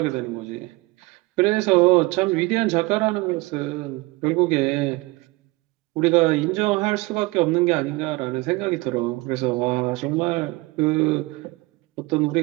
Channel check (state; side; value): quieter; left; 22.6 dB